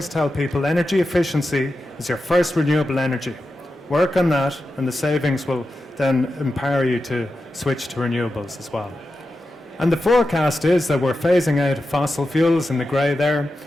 tell people energy efficiency is your first renewable energy. Work on that, and the savings will then empower you to switch to renewables as well. And the forecast is that we're phasing out fossil fuels in the grey there,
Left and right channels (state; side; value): normal; both; correlation 0.90